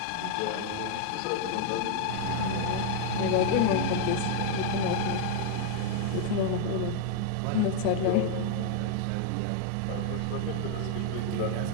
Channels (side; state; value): both; different; correlation 0.00